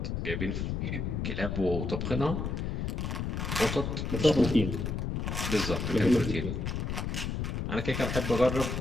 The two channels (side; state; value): left; noise; rumble, 2 dB below the sound